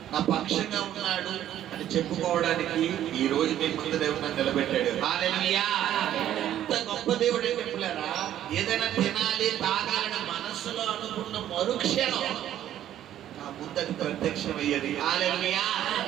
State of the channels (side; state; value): left; quieter; 11.7 dB